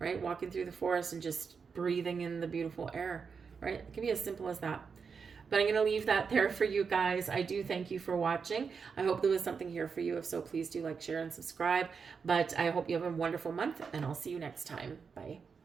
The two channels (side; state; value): left; quieter; 5.7 dB